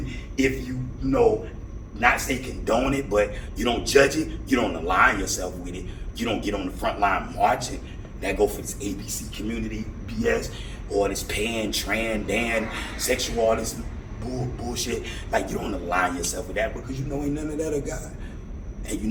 if you know, not say condone it, but you don't judge it, you don't align yourself with it. You don't get on the front line marching. That go for this ABC community BS, or this pan, tran, dan, sexual, all this bullshit. Like, you don't align yourself with that because you know ain't none of that of God. And you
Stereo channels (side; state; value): both; identical; correlation 1.00